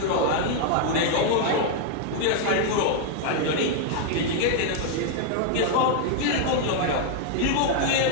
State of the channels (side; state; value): both; different; correlation 0.00